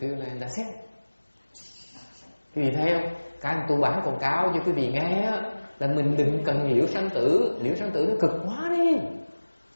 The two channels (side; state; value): both; inverted; correlation -1.00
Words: Pure Land. That's it. Quý vị thấy không? Cái tôi bán quảng cáo cho quý vị nghe là mình đừng cần liễu sanh tử. Liễu sanh tử nó cực quá đi.